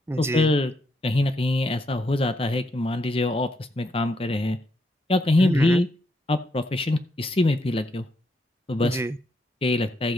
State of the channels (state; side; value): normal; both; correlation 0.77